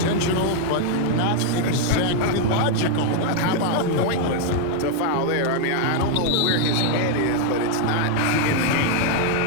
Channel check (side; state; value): both; different; correlation 0.00